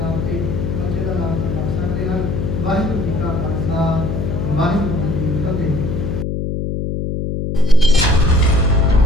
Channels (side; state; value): left; noise; hum, 2 dB below the sound